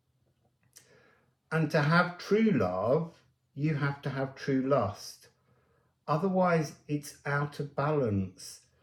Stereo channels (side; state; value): both; identical; correlation 1.00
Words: And to have true love, you have to have true lust. Otherwise, it's out of balance.